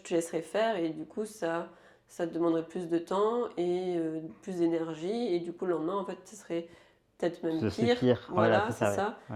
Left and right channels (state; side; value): identical; both; correlation 1.00